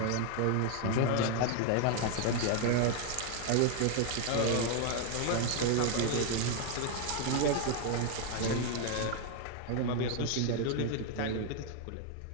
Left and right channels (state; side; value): different; both; correlation 0.00